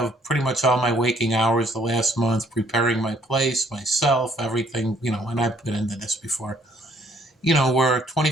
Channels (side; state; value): both; normal; correlation 0.64